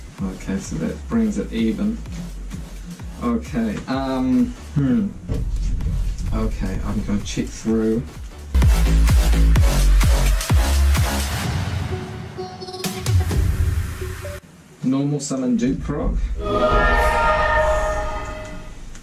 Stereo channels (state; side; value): identical; both; correlation 1.00